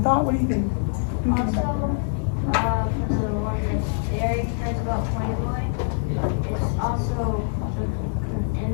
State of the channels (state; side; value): silent; right; digital silence